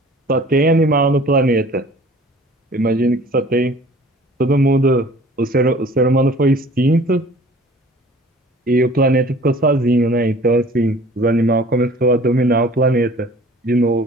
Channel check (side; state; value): both; normal; correlation 0.49